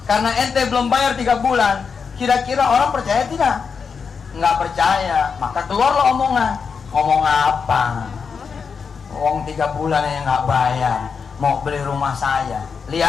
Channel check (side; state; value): right; quieter; 5.8 dB